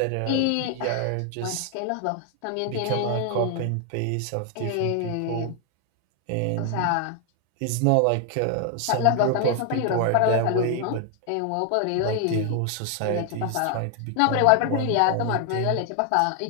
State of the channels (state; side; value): different; both; correlation 0.00